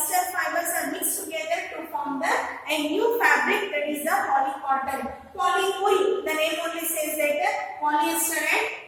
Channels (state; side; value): identical; both; correlation 1.00